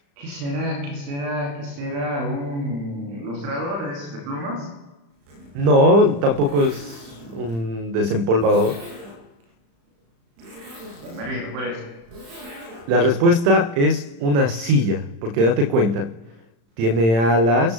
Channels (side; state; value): left; late; 35 ms